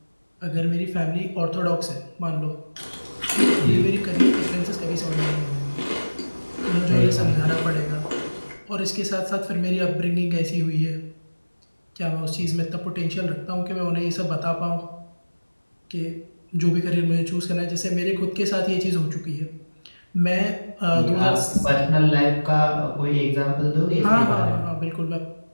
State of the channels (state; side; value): inverted; both; correlation -1.00